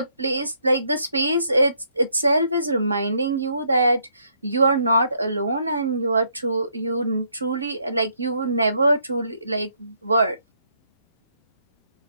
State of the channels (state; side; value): inverted; both; correlation -0.72